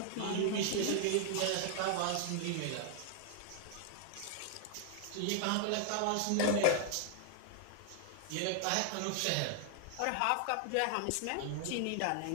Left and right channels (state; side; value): different; both; correlation 0.00